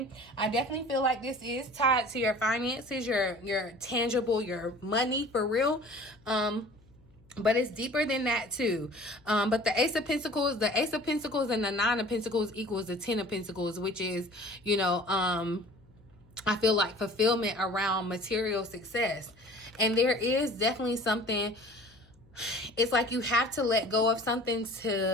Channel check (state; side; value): noise; left; hum, 29 dB below the sound